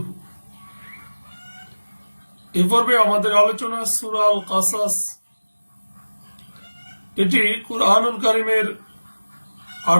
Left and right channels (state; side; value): inverted; both; correlation -1.00